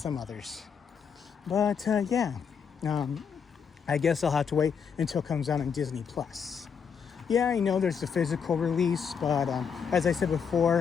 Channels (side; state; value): right; quieter; 6.7 dB